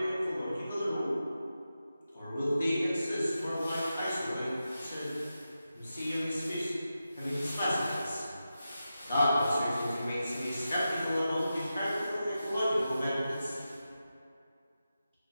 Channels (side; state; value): both; inverted; correlation -0.91